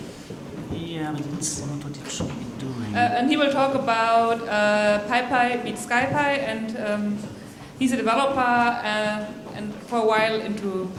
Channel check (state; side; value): identical; both; correlation 1.00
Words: Yeah, but it's not what it should be doing. And he will talk about PyPy meets SciPy, and he's a developer and for a while into